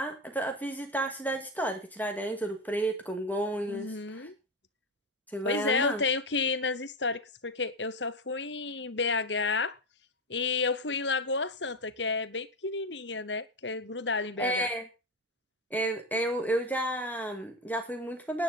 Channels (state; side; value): normal; both; correlation 0.15